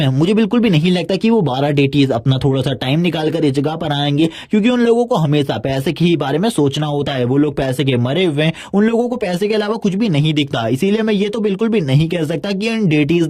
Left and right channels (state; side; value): identical; both; correlation 1.00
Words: मुझे बिल्कुल भी नहीं लगता कि वो 12 डेटीज अपना थोड़ा सा टाइम निकाल कर इस जगह पर आएंगे, क्योंकि उन लोगों को हमेशा पैसे के ही बारे में सोचना होता है। वो लोग पैसे के मरे हुए हैं, उन लोगों को पैसे के अलावा कुछ भी नहीं दिखता। इसीलिए मैं ये तो बिल्कुल भी नहीं कह सकता कि इन डेटीज